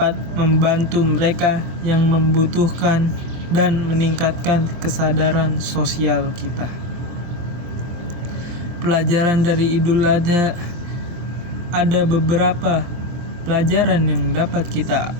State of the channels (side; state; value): left; late; 23 ms